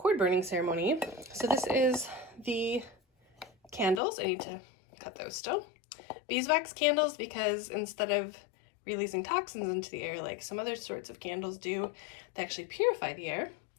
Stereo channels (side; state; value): right; drops out; at 4.0 s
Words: burning ceremony. So this is the candles. I need to cut those still. Beeswax candles, because instead of releasing toxins into the air like some other sorts of candles do, they actually purify the air.